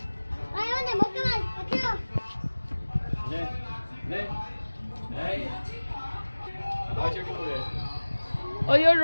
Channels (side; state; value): both; inverted; correlation -1.00